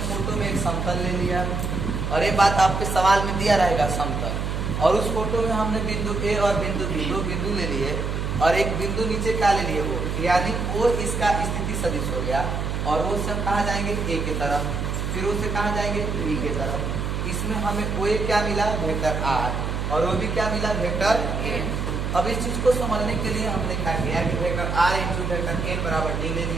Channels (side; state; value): right; noise; hum, 2 dB below the sound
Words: में एक समतल ले लिया और ये बात आपके सवाल में दिया रहेगा समतल, और उस फोटो में हमने बिंदु A और बिंदु B दो बिंदु ले लिए और एक बिंदु नीचे क्या ले लिए वो, यानी वो इसका स्थिति सदिश हो गया। और वो सब कहाँ जाएंगे A के तरफ, फिर वो से कहाँ जाएंगे B के तरफ। इसमें हमें वो क्या मिला वेक्टर R और वो भी क्या मिला वेक्टर n। अब इस चीज को समझने के लिए हमने क्या किया कि vector r into vector n बराबर d ले